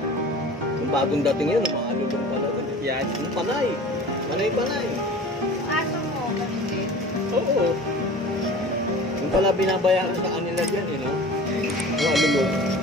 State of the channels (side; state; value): both; normal; correlation 0.41